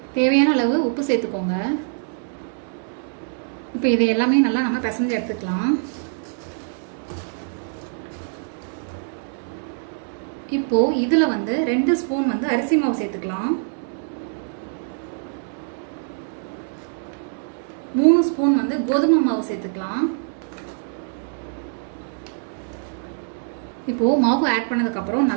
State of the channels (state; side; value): silent; left; 63 dB below the other